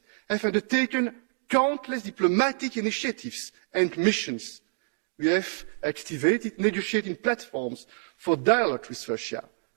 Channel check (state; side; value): silent; left; digital silence